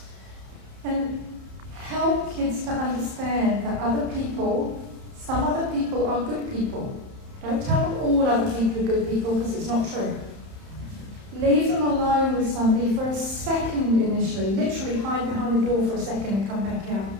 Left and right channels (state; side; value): late; left; 31 ms